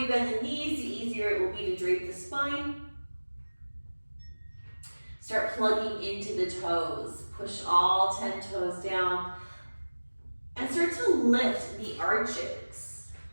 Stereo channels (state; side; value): inverted; both; correlation -1.00